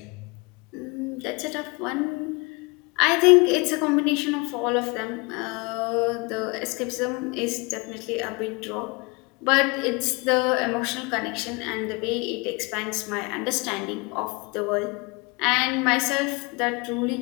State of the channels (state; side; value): quieter; right; 28.3 dB